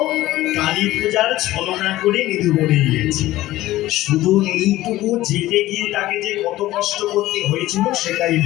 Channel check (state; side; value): quieter; right; 16.1 dB